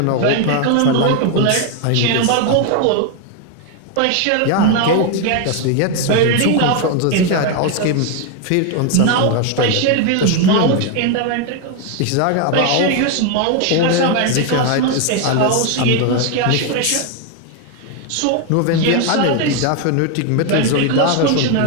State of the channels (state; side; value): different; both; correlation 0.01